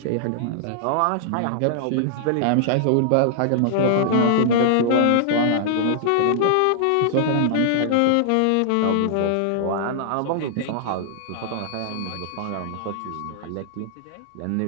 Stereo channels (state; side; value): different; both; correlation -0.01